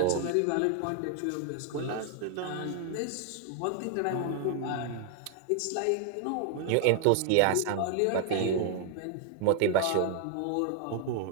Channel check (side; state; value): both; different; correlation 0.00